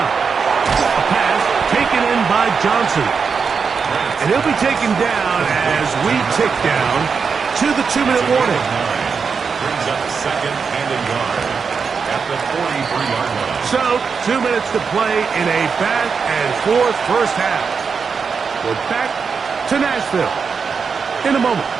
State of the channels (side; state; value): left; quieter; 5.7 dB